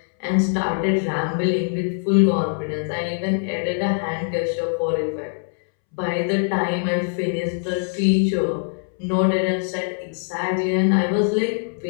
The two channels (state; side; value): silent; right; 64 dB below the other